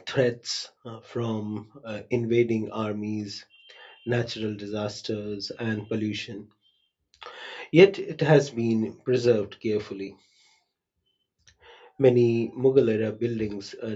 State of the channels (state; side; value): identical; both; correlation 1.00